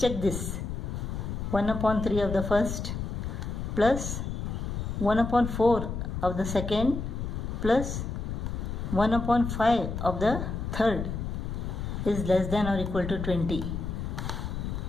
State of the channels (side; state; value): left; noise; rumble, 4 dB below the sound